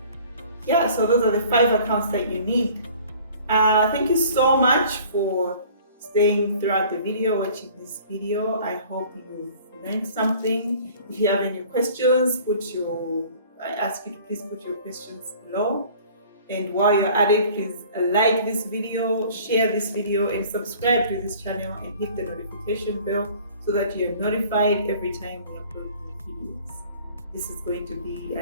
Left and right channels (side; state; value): both; inverted; correlation -0.50